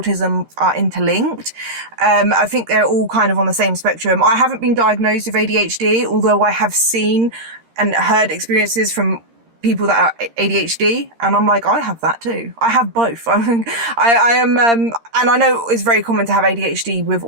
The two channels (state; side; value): late; left; 13 ms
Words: are interlinked. I think they're all kind of on the same spectrum. I haven't been diagnosed with ADHD, although I have seen and heard experiences from people that are ADHD, and I'm like, I have that too. I have both. I am, and I know it's very common to have ADHD with